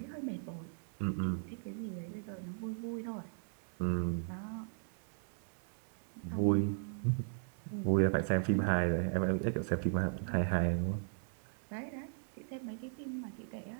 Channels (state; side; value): silent; left; digital silence